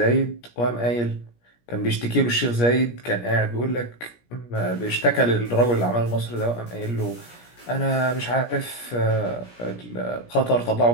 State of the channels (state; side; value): late; right; 17 ms